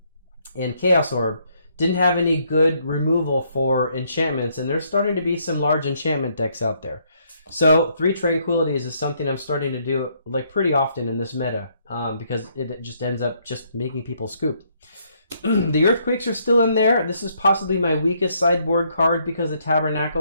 Chaos Orb, didn't have any good removal for enchantments, and there's starting to be some large enchantment decks out there. So 3 Tranquilities is something I'm starting to do like pretty often in this meta, because it just ends up just making people scoop. The Earthquakes are still in there. This is possibly my weakest sideboard card because the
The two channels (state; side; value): inverted; both; correlation -0.70